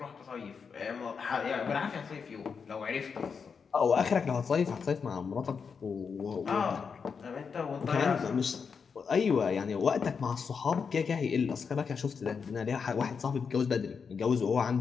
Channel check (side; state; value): right; quieter; 5.9 dB